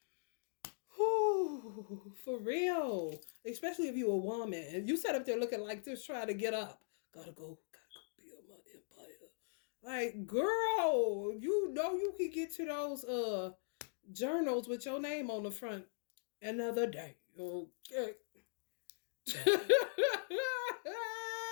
Ooh, for real. Especially if you a woman. And you sat up there looking like this, trying to get up. Gotta go build my empire. Like, girl, you know you can get to those journals with your name on the front another day. Okay.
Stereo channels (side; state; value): right; silent; digital silence